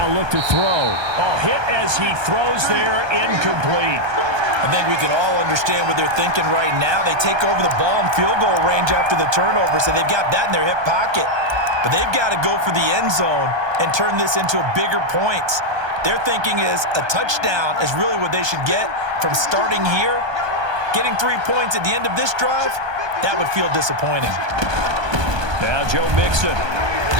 look to throw. Oh, hit as he throws there, incomplete. I think we can all understand what they're thinking right now. They take over the ball in field goal range after the turnover, so they've got that in their hip pocket. But they've got to go for the end zone and turn this into a bigger points. Their thinking is a touchdown is really what they should get from starting here. Getting 3 points at the end of this drive, that would feel disappointing. Now Joe Mixon.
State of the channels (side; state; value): left; late; 1.2 ms